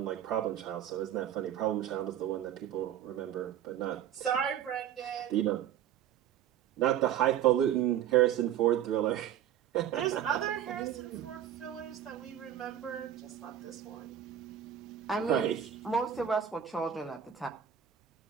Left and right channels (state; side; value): quieter; left; 10.1 dB